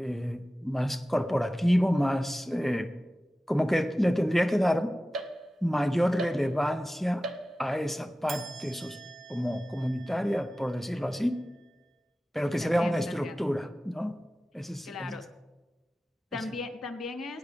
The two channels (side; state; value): both; normal; correlation 0.95